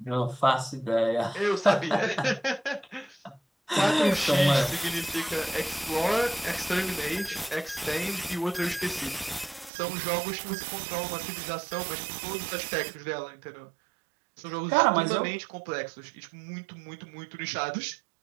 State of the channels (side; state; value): left; drops out; at 9.7 s